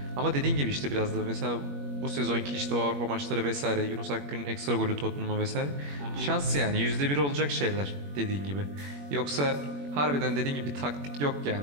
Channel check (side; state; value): left; late; 21 ms